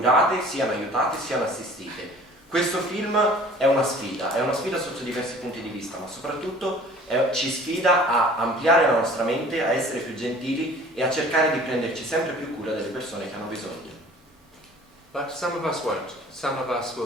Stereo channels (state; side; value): normal; both; correlation 0.48